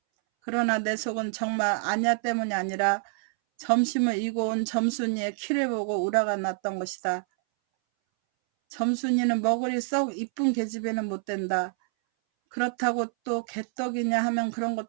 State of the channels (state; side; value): silent; left; 60 dB below the other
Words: 그러나 내 속은 정말 안냐 때문이 아니라 점심을 이고 온 점순이의 키를 보고 우라가 났던 것이다. 점순이는 머글이 썩 이쁜 계집애는 못 된다. 그렇다고 또 개떡이냐 하면 그런